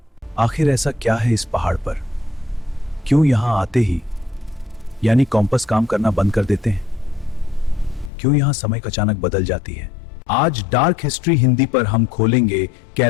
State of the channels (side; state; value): right; drops out; at 8.1 s